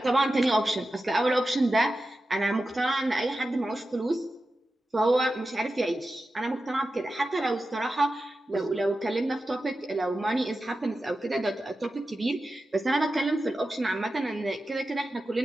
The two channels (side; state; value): both; normal; correlation 0.92